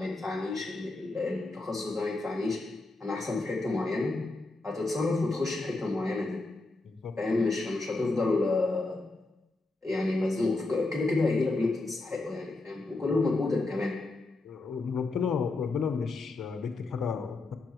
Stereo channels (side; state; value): right; quieter; 3.1 dB